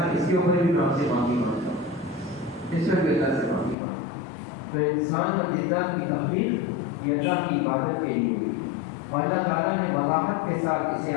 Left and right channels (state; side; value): drops out; right; at 3.8 s